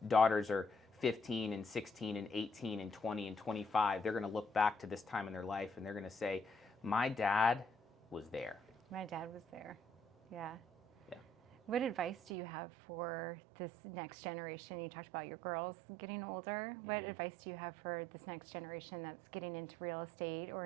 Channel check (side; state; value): left; drops out; at 12.3 s